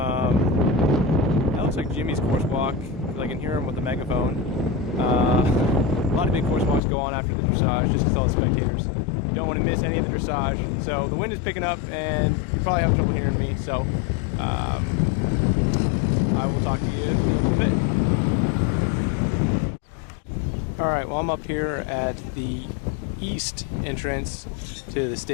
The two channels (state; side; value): drops out; right; at 6.8 s